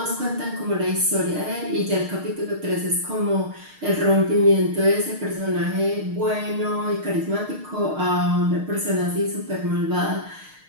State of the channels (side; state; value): left; late; 6.5 ms